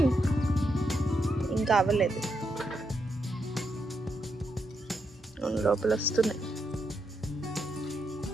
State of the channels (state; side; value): normal; both; correlation 0.82